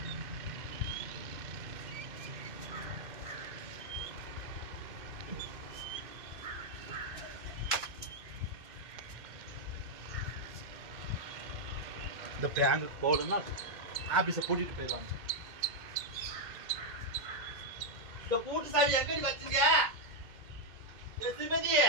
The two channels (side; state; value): left; late; 2.2 ms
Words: இந்த பேங்குக்கு போகலன்னா ஆபீஸை பூட்டிட்டு போயிடுவாங்க. இந்த பூட்டு சாவி எங்கடி வச்சுங்க சிமதி?